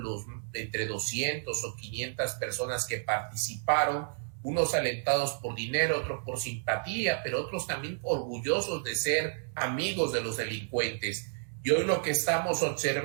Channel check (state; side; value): silent; left; digital silence